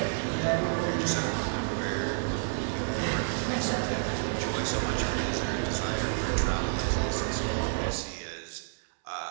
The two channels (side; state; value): left; silent; 58 dB below the other